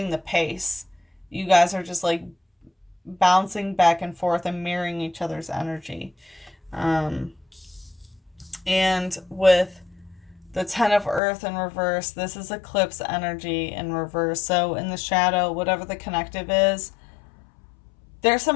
the pace. You guys are just like bouncing back and forth and mirroring each other's energy. And with the 10 of Earth in reverse, this is eclipse energy in reverse. So in the shadow, whatever the connective is, there's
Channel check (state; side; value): drops out; right; at 11.2 s